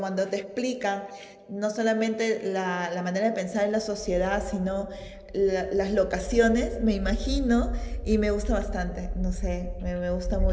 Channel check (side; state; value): both; identical; correlation 1.00